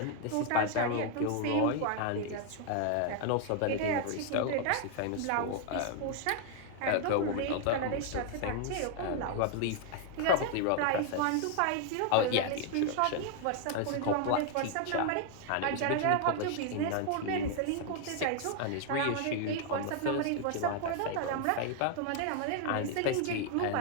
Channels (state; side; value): different; both; correlation 0.00